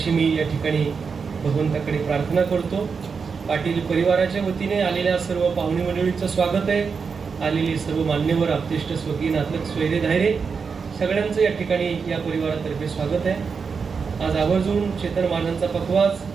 मी या ठिकाणी भगवंताकडे प्रार्थना करतो. पाटील परिवाराच्या वतीने आलेल्या सर्व पाहुणे मंडळींचं स्वागत आहे. आलेली सर्व मान्यवर, आपतेष्ट, स्वकीय, नातलग, स्वैरे, धायरे सगळ्यांचं या ठिकाणी या परिवारातर्फे स्वागत आहे. आज आवर्जून चेतन महाराजांचा पखवाज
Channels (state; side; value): quieter; left; 5.5 dB